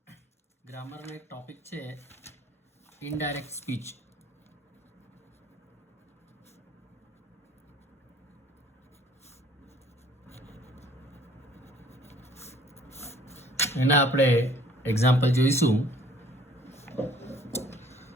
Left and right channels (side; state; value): both; normal; correlation 0.56